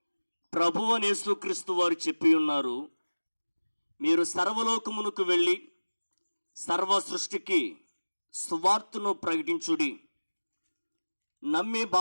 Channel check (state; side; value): inverted; both; correlation -1.00